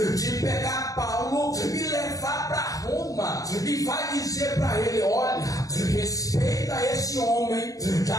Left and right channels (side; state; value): right; late; 0.17 ms